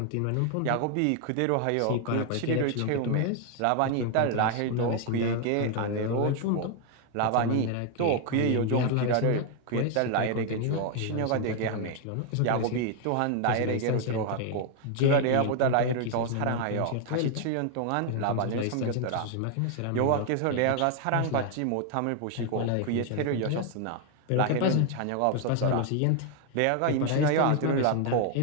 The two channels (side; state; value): both; different; correlation 0.00